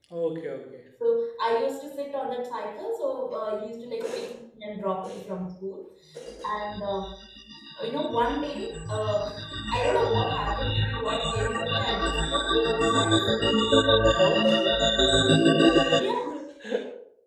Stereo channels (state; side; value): identical; both; correlation 1.00